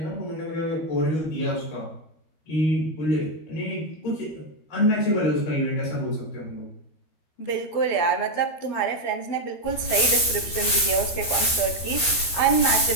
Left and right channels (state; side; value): late; right; 13 ms